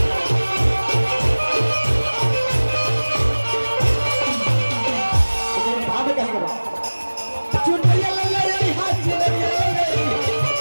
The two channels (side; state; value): both; inverted; correlation -1.00